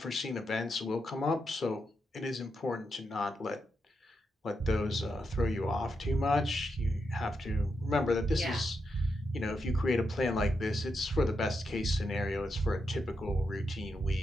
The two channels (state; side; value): normal; both; correlation 0.84